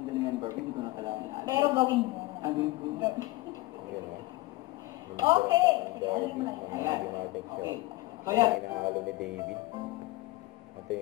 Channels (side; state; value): right; quieter; 20.3 dB